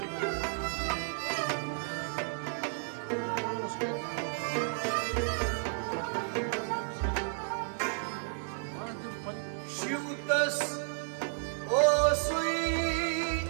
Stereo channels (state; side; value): silent; left; digital silence